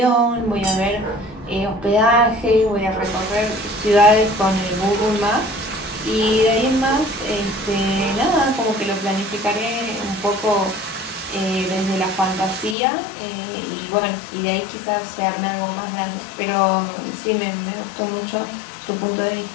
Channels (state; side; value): drops out; right; at 12.8 s